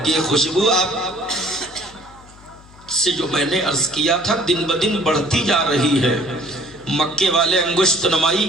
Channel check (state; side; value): noise; left; hum, 24 dB below the sound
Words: کہ یہ خوشبو آپ سے جو میں نے عرض کیا تھا دن بدن بڑھتی جا رہی ہے. مکے والے انگشت نمائی